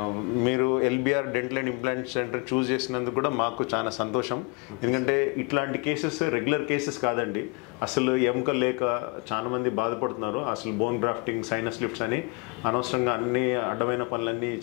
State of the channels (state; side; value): quieter; right; 30.1 dB